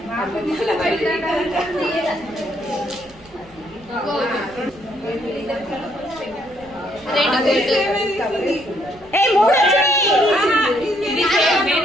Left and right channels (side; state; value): right; noise; rumble, 25 dB below the sound